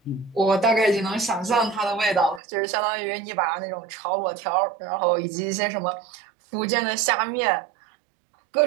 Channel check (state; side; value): drops out; left; at 2.4 s